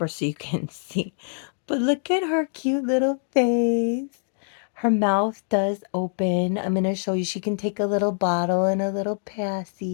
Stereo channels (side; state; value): right; silent; digital silence